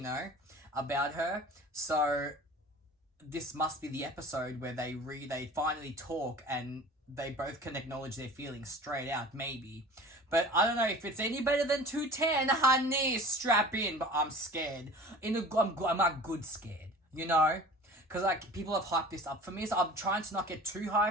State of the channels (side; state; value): both; normal; correlation 0.42